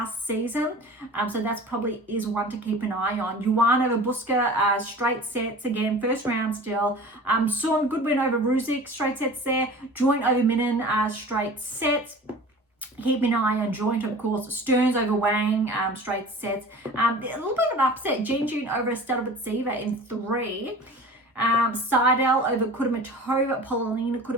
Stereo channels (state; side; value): normal; both; correlation 0.40